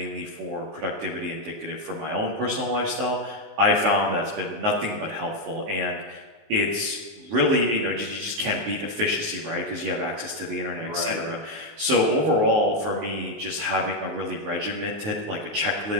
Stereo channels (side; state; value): left; late; 19 ms